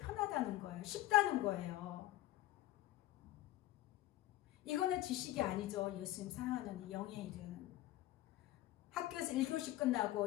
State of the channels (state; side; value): quieter; right; 15.5 dB